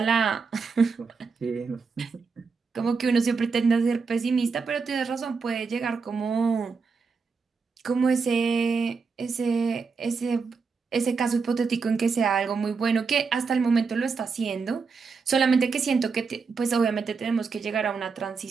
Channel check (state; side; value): quieter; left; 5.0 dB